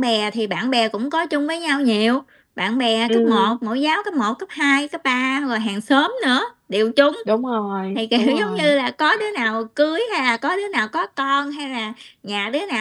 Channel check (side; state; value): both; identical; correlation 1.00